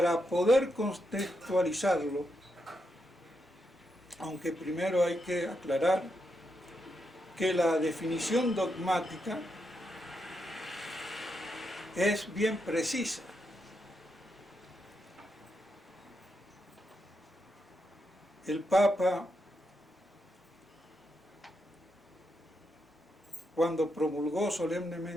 poder contextualizarlo, aunque primero hay que aclarar que la definición dogmática es bien precisa. El Papa, cuando promulgó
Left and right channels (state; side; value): normal; both; correlation 0.83